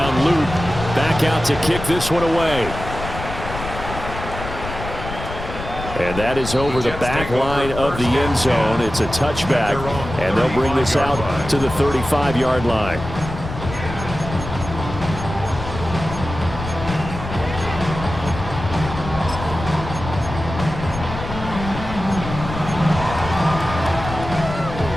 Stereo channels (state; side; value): noise; left; rumble, 8 dB below the sound